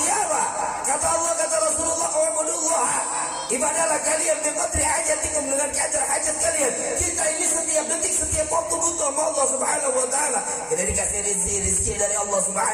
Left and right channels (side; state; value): both; identical; correlation 1.00